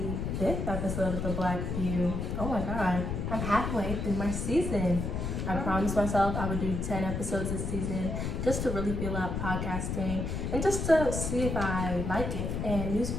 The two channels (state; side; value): noise; left; rumble, 2 dB below the sound